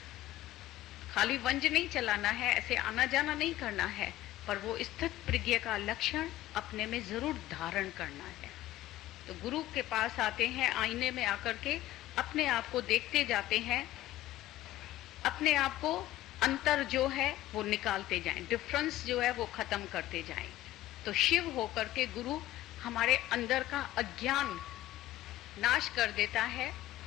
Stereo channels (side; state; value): right; quieter; 15.1 dB